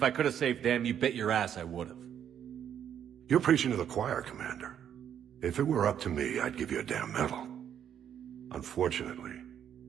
I could have saved them, you bet your ass I would have. You're preaching to the choir, Commander. If it were up to me, I'd give you a damn medal. Unfortunately,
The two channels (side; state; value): left; quieter; 9.2 dB